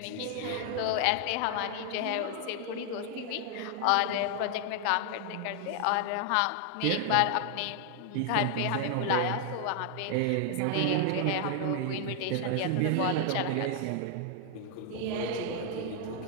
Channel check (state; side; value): different; both; correlation 0.00